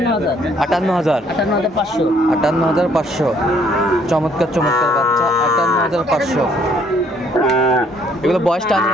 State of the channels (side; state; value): both; normal; correlation 0.64